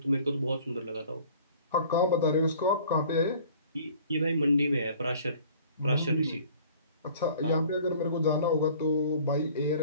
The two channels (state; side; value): inverted; both; correlation -0.51